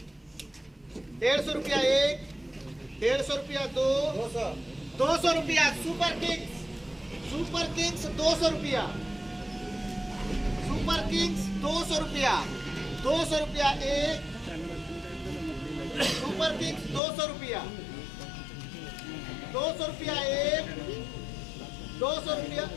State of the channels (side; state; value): right; drops out; at 17.0 s